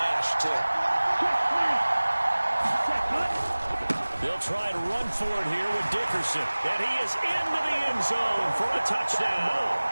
too. They'll try and run for it here with Dickerson, and he is into the end zone for a touchdown.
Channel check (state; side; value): inverted; both; correlation -1.00